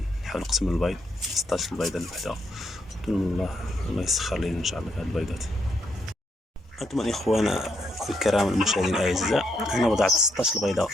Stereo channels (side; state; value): both; normal; correlation 0.77